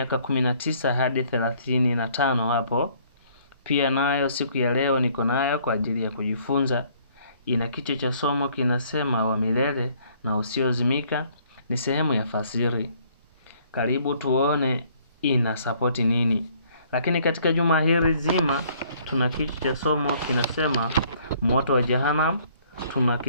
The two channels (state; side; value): inverted; both; correlation -0.62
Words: 19 hadi 35 hapo. Pia nayo siku ya leo niko nayo kwa ajili ya kujifunza. Ina kichwa cha somo kinasema wa milele na usiozimika, ni sehemu ya fasiri. Karibu tuone ina sapoti nini. Lakini katika juma hili zima tuna kichwa cha somo kinasema moto wa Jehanamu. Tuna